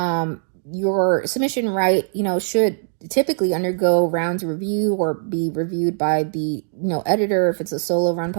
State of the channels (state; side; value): silent; left; digital silence